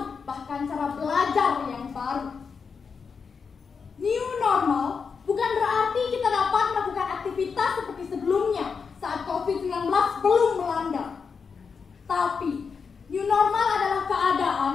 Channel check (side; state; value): right; quieter; 5.6 dB